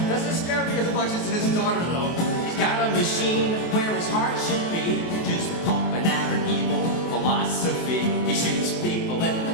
Doesn't scare me as much as his daughter, though. He's got a machine where his heart should be, just pumping out an evil philosophy. He shoots people in the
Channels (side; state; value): right; late; 23 ms